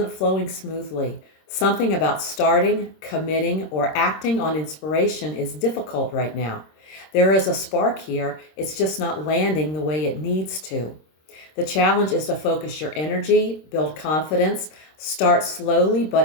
flowing smoothly. Something about starting, committing, or acting on inspiration is difficult right now. There is a spark here, it's just not landing the way it needs to. The challenge is to focus your energy, build confidence, start slowly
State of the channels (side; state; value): right; late; 26 ms